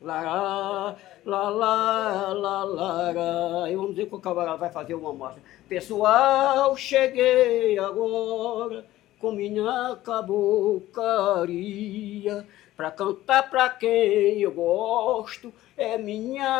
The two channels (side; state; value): right; quieter; 15.3 dB